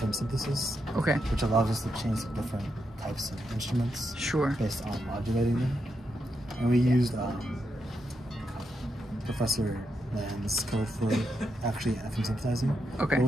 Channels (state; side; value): normal; both; correlation 0.84